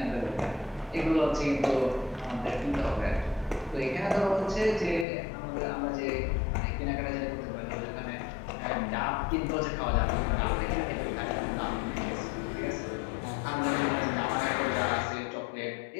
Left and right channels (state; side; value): drops out; right; at 5.1 s